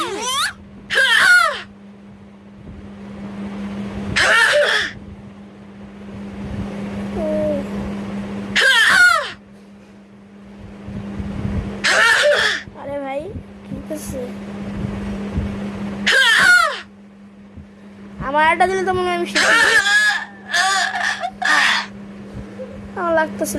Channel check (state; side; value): identical; both; correlation 1.00